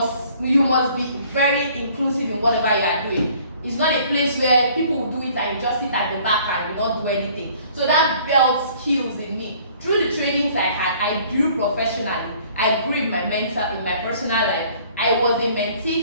be very inclusive in whatever you are doing. It's not a place where people will do it and you just sit at the back and you don't do anything. So that built skills in me. Through the trainings I had, I grew professionally. I grew in my personal life. I was a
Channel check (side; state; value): both; inverted; correlation -0.56